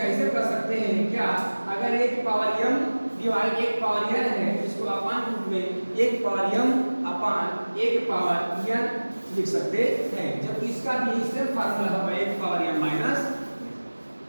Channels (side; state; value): both; inverted; correlation -1.00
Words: कर सकते हैं क्या, अगर एक पावर m डिवाइड एक पावर n है, इसको अपान रूप में एक पावर m अपान एक पावर n लिख सकते हैं। जब इसका भी सेम फार्मूला होगा एक पावर m माइनस,